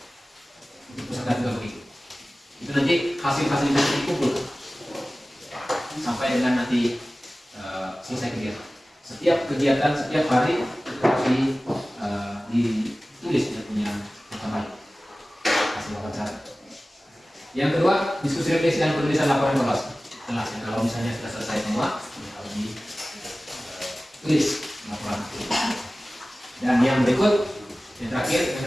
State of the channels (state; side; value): normal; both; correlation 0.97